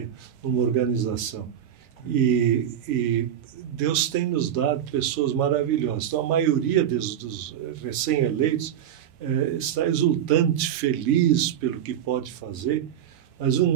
numa organização. E Deus tem nos dado pessoas maravilhosas. Então, a maioria dos recém-eleitos está exultante, feliz pelo que pode fazer. Mas um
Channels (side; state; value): left; quieter; 10.0 dB